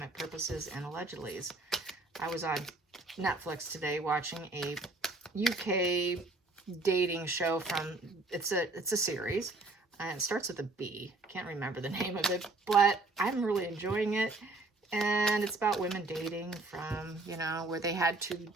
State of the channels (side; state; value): left; quieter; 3.1 dB